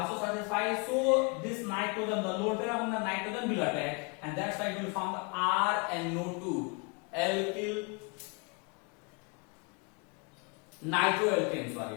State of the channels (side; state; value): right; quieter; 32.5 dB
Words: satisfied. So this nitrogen, the lone pair of the nitrogen will attack, and that's why it will form the RNO2, alkyl nitroalkane. Sorry,